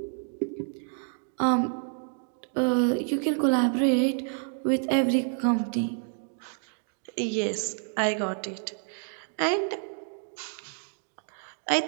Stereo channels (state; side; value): silent; left; 59 dB below the other